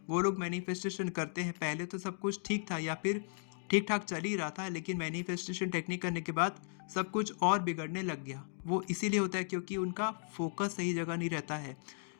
वो लोग मैनिफेस्टेशन करते हैं, पहले तो सब कुछ ठीक था या फिर ठीक ठाक चल ही रहा था, लेकिन मैनिफेस्टेशन टेक्निक करने के बाद सब कुछ और बिगड़ने लग गया। वो इसीलिए होता है क्योंकि उनका फोकस सही जगह नहीं रहता है।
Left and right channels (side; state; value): right; silent; digital silence